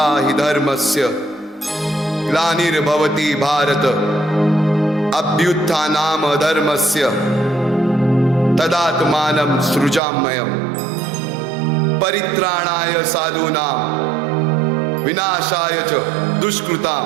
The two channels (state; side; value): drops out; left; at 10.0 s